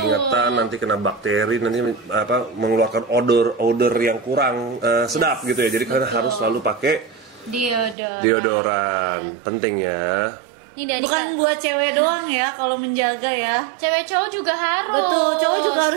nanti kena bakteri, nanti mengeluarkan odor yang kurang sedap gitu ya. Jadi kalian harus selalu pakai deodoran, penting ya. Bukan buat cewek doang ya kalau menjaga ya. Cewek cowok juga harus. Betul, cowok juga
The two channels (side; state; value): left; drops out; at 8.0 s